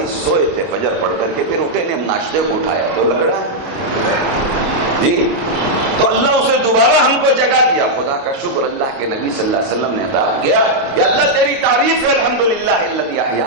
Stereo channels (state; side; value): late; left; 29 ms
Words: سوئے تھے، فجر پڑھ کر کے پھر اٹھے نے، ناشتے کو اٹھایا تو لگڑا ہے جی. تو اللہ اسے دوبارہ ہم کو جگا دیا. خدا کا شکر اللہ کے نبی صلی اللہ علیہ وسلم نے ادا کیا کہ اللہ تیری تعریف ہے، الحمدللہ الذی